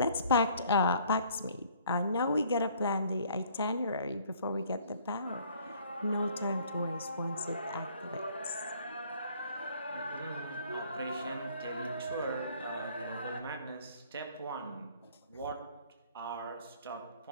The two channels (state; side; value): inverted; both; correlation -0.59